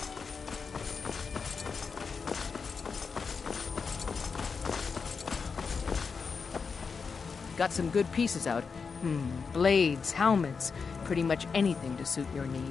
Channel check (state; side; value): quieter; right; 5.3 dB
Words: Got some good pieces out. Blades, helmets, pretty much anything to suit your